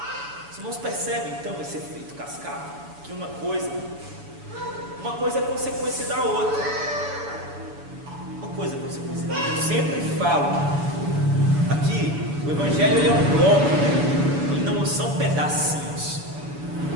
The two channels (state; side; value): late; left; 7.1 ms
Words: Os irmãos percebem então esse efeito cascata? Que uma coisa é consequência da outra. Uma coisa é consequência da outra. Eu sempre falo aqui, o Evangelho ele é um bloco, né? Ele não são pedacinhos.